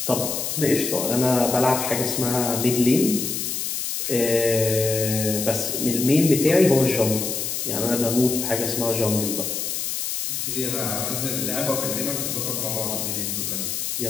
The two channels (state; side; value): noise; left; hiss, 2 dB below the sound